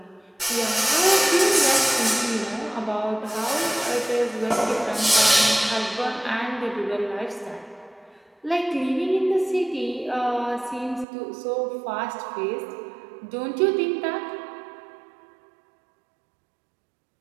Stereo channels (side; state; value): left; drops out; at 11.1 s